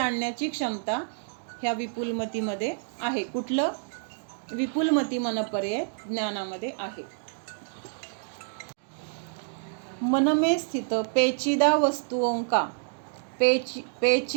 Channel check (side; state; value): left; silent; digital silence